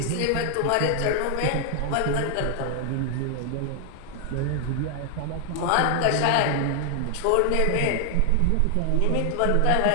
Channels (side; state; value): both; different; correlation 0.00